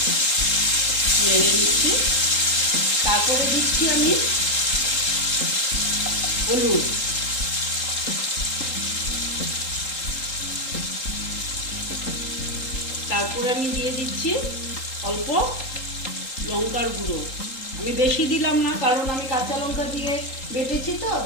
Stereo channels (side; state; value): right; late; 3.8 ms